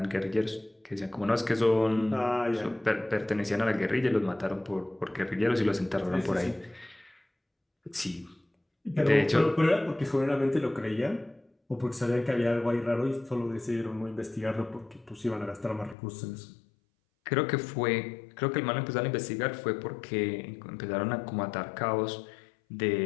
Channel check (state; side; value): drops out; right; at 16.0 s